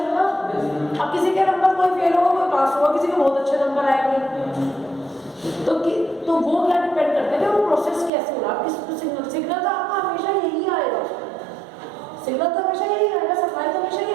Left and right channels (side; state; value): left; drops out; at 8.1 s